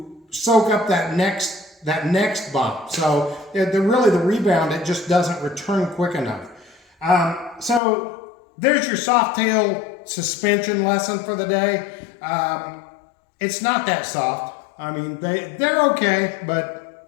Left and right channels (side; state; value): right; drops out; at 7.8 s